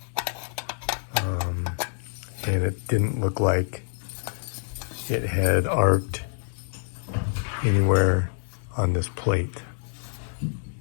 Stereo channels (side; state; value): right; silent; 58 dB below the other